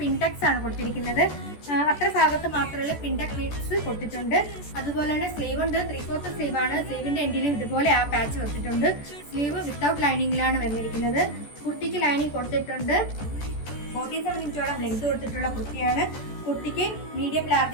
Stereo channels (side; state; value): right; late; 14 ms